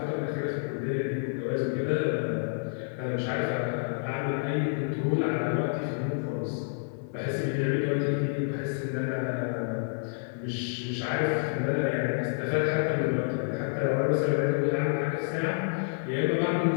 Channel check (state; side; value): silent; right; 58 dB below the other